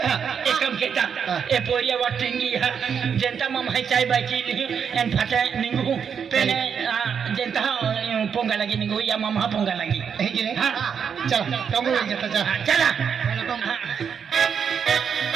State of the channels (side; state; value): left; quieter; 7.1 dB